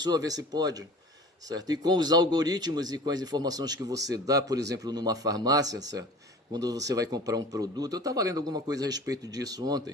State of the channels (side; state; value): both; normal; correlation 0.41